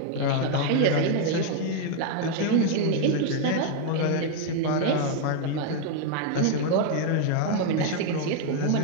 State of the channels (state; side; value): different; both; correlation 0.00